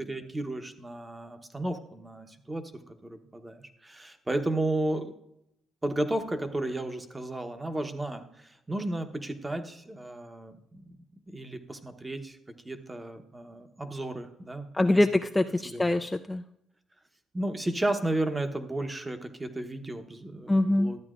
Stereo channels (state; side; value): normal; both; correlation 0.94